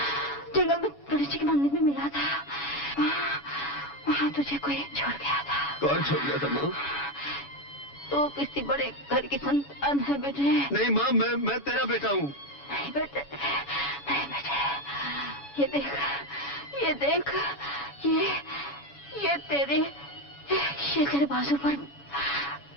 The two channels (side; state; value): right; late; 7.1 ms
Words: गणेश जी के मंदिर में मिला था। वहाँ तुझे कोई छोड़ गया था। कौन छोड़ गया था माँ? तो किसी बड़े घर की संतान है बेटे। नहीं माँ, मैं तेरा बेटा हूँ। नहीं बेटे, ये देख, ये तेरे बाजू पर